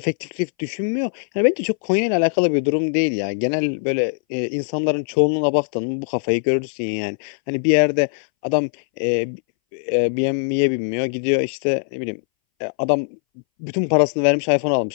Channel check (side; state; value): right; silent; 62 dB below the other